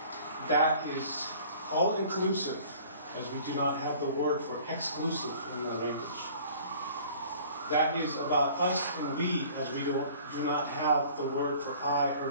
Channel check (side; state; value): both; inverted; correlation -0.50